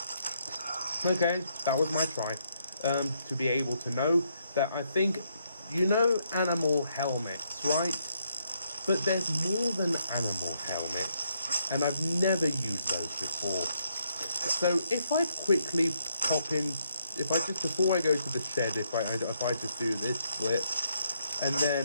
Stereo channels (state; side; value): inverted; both; correlation -0.75